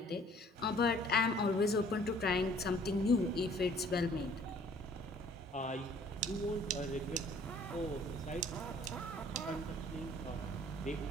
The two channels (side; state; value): both; normal; correlation 0.56